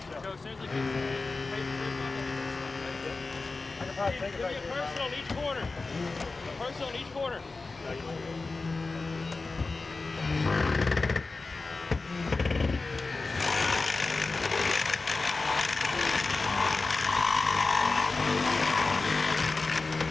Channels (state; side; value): quieter; right; 3.7 dB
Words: So seriously, I can probably take it give back me a here. person on each corner. A person on each corner.